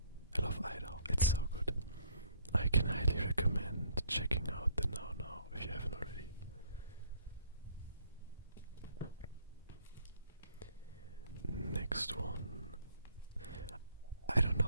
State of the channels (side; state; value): both; inverted; correlation -0.62